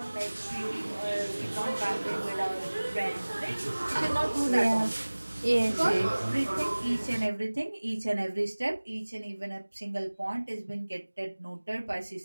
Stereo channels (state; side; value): inverted; both; correlation -1.00